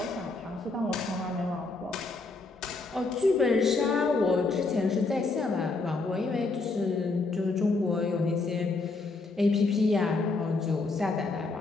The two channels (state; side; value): quieter; right; 3.7 dB